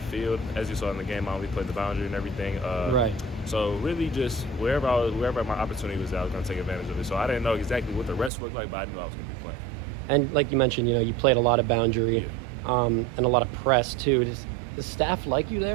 field. As you saw in the game, I only played the boundary and everything. Right. So really just wherever my opportunity was, I was going to take advantage of it. So I didn't know exactly what the rest looked like, but I knew I was going to be playing. And like you mentioned, you played a lot of boundary and a lot of press too. Does the staff like you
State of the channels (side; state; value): left; drops out; at 8.3 s